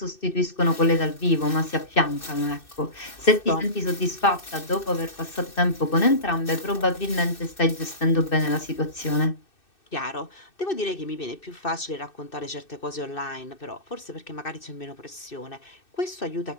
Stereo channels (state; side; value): late; right; 2.6 ms